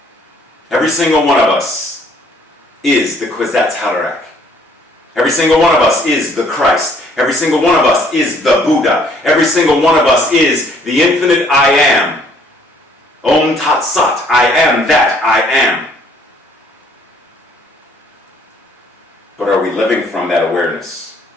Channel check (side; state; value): both; normal; correlation 0.62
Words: Every single one of us is the Kwisatz Haderach. Every single one of us is the Christ. Every single one of us is the Buddha. Every single one of us is the infinite I am. Om Tat Sat, I am that I am. But are we living from that awareness?